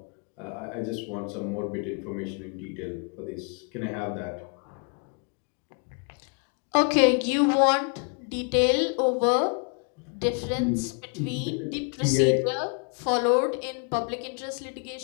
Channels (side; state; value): right; quieter; 38.1 dB